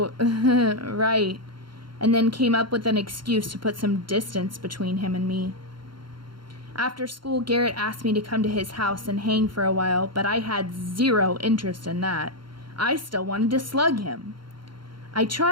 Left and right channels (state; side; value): late; left; 0.73 ms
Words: right," and then came up with an excuse to put some distance between him and me. After school, Garrett asked me to come to his house and hang for a while, but I had zero interest in that. I still wanted to slug him. I